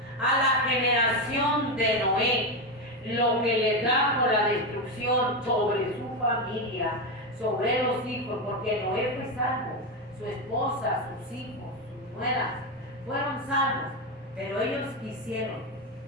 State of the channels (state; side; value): normal; both; correlation 0.12